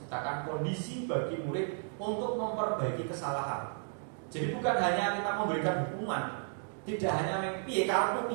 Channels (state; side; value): silent; left; 55 dB below the other